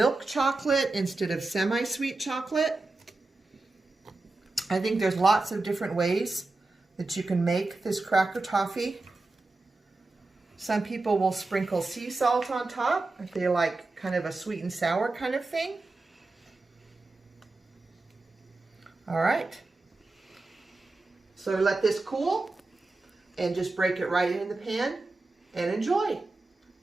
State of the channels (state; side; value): quieter; left; 3.3 dB